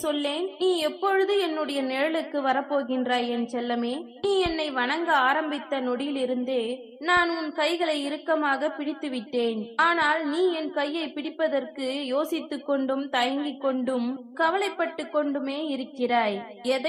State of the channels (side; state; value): both; identical; correlation 1.00